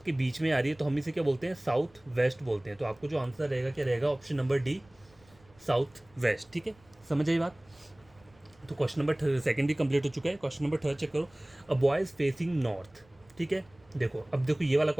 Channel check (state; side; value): noise; right; rumble, 30 dB below the sound